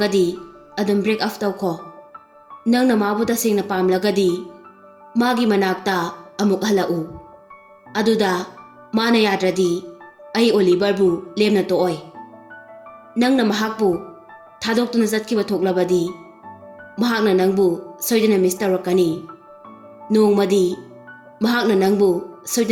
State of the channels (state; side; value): identical; both; correlation 1.00